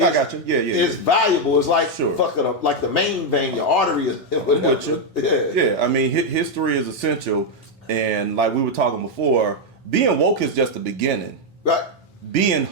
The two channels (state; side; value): normal; both; correlation 0.01